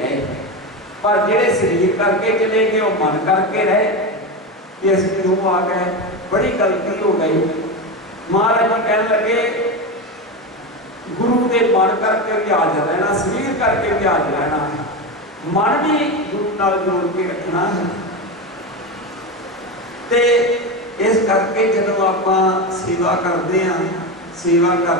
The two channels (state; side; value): normal; both; correlation 0.18